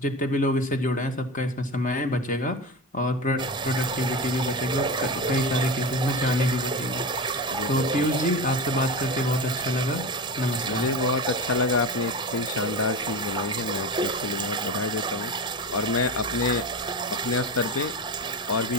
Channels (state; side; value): normal; both; correlation 0.24